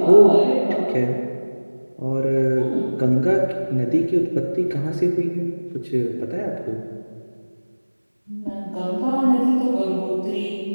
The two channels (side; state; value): both; inverted; correlation -1.00